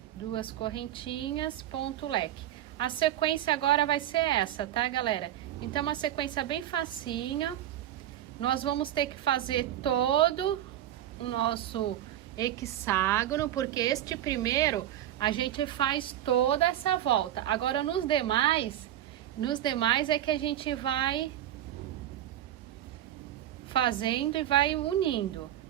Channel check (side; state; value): left; quieter; 12.2 dB